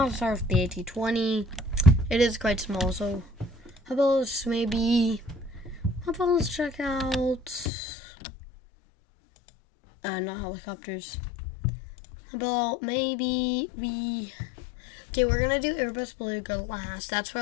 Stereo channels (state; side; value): drops out; right; at 7.7 s